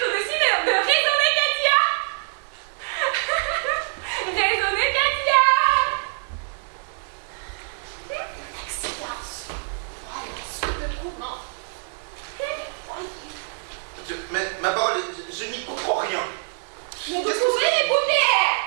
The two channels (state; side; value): silent; left; 62 dB below the other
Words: de suite de raisonner Katia. Raisonner Katia. Excellence. Voilà ce dévouement. Voyez. Mais ma parole, je n'y comprends rien. Mais vous Qu'est-ce que pouvez c'est? m'écouter.